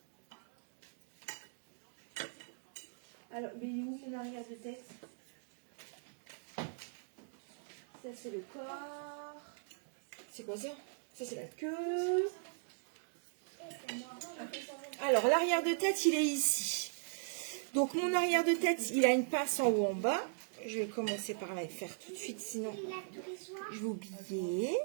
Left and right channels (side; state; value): left; silent; digital silence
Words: Alors, mais il est où mon arrière de tête? Ça, c'est le corps. C'est quoi ça? Ça, c'est la queue. Alors, l'arrière de tête, il est ici. Donc, mon arrière de tête, il a une pince en haut, en bas. Je vais commencer par la faire tout de suite, sinon je vais oublier.